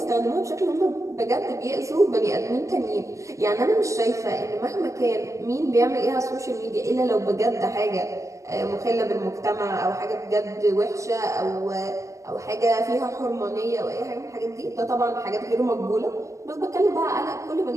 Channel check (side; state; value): left; late; 0.15 ms